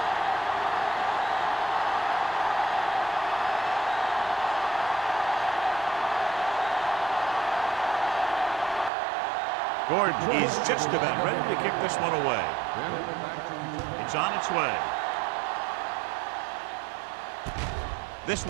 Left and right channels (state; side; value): drops out; left; at 8.9 s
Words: Gordon is just about ready to kick this one away. It's on its way. This